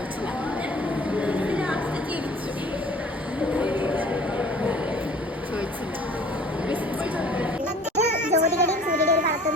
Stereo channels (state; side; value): normal; both; correlation 0.49